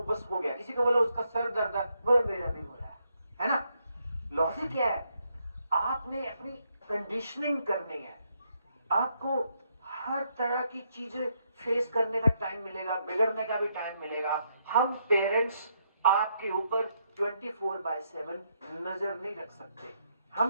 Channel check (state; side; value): inverted; both; correlation -0.76